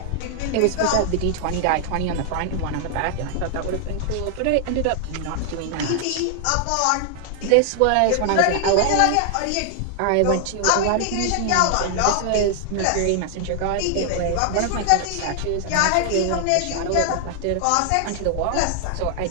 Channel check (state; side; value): different; both; correlation 0.00